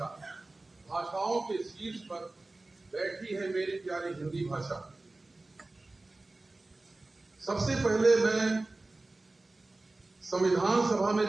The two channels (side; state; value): left; quieter; 3.0 dB